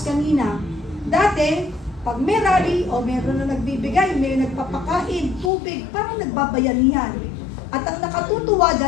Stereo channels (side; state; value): right; drops out; at 5.5 s